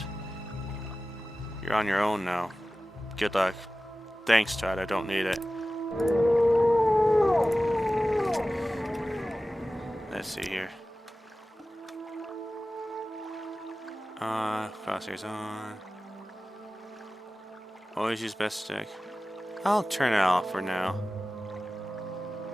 You're on your own now. Good luck. Thanks, Todd. I don't need it. Let's see here. Crosshairs on. Always use best stick. I'll turn it off for now.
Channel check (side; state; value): both; normal; correlation 0.96